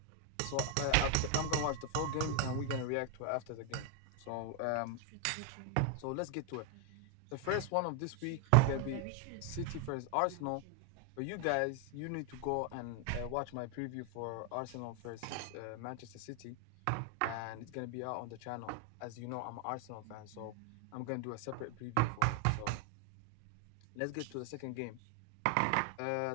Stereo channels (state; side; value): different; both; correlation 0.01